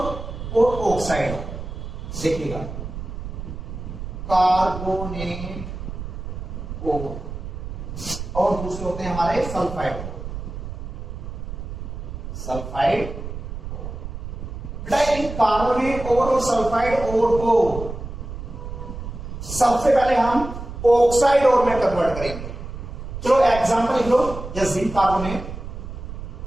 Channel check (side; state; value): right; noise; rumble, 8 dB below the sound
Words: ऑक्साइड ओर। देखिएगा कार्बोनेट ओर और दूसरे होते हैं हमारे सल्फाइड ओर, सल्फाइड बेटा इन कार्बोनेट ओर और सल्फाइड ओर को सबसे पहले हम ऑक्साइड ओर में कन्वर्ट करेंगे। चलो एग्जांपल लिख लो, जैसे जिंक कार्बोनेट